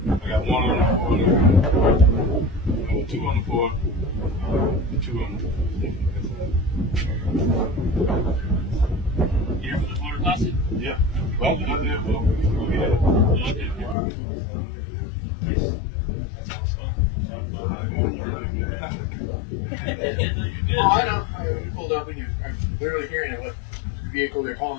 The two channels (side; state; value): right; drops out; at 14.0 s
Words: I got one on the floor, two on the floor, two on the Here for the motor closet? yeah. Well, not there, but we had it. Okay. Nice. That's awesome. Sorry about that. No, you're good. Oh, I know. We pulled up and I'm literally hearing it. What vehicle they're